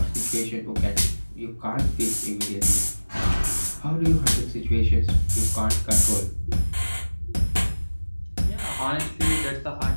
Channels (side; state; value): both; inverted; correlation -1.00